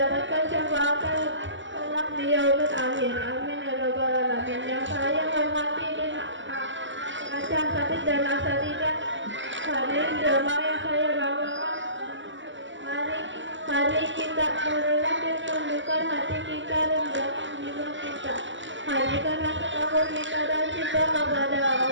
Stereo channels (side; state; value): left; late; 0.54 ms